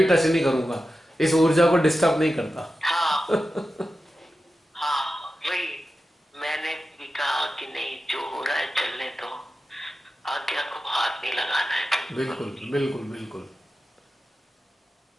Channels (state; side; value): normal; both; correlation 0.92